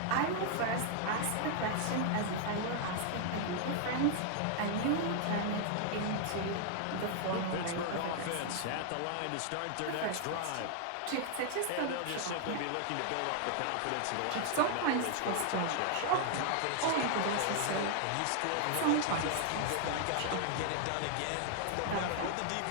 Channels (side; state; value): both; different; correlation 0.00